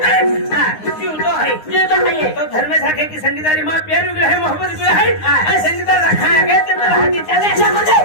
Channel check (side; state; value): right; late; 9.7 ms